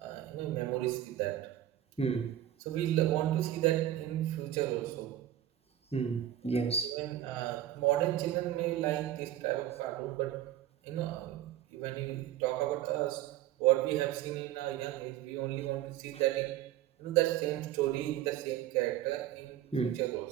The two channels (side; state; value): left; quieter; 12.2 dB